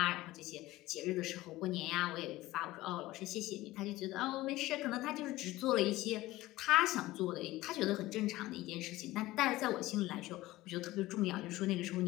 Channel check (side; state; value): right; quieter; 17.7 dB